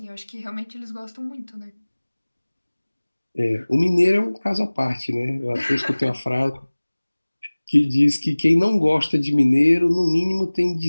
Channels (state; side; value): inverted; both; correlation -1.00